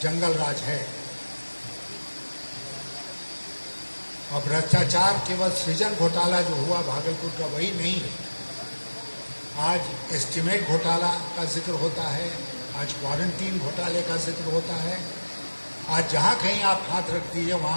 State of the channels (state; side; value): inverted; both; correlation -1.00